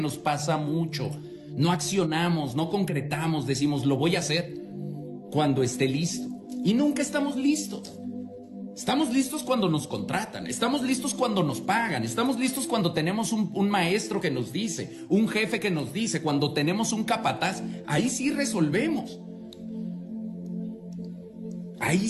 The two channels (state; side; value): identical; both; correlation 1.00